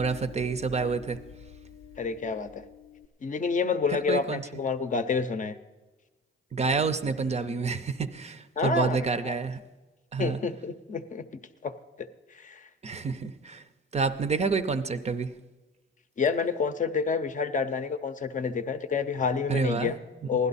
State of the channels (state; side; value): normal; both; correlation 0.35